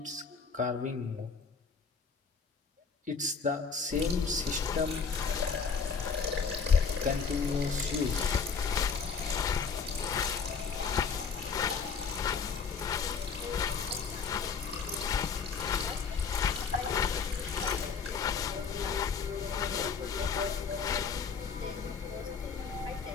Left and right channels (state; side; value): quieter; right; 5.6 dB